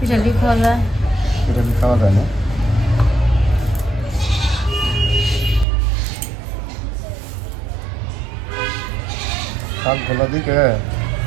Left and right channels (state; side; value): drops out; left; at 5.7 s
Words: খাওয়া যায়। পিটালি খাওয়া যায় না। শাকগুলো দিকে